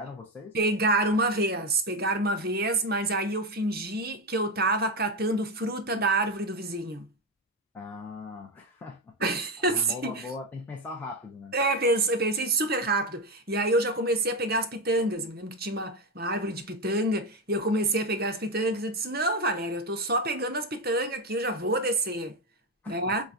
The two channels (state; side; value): normal; both; correlation 0.12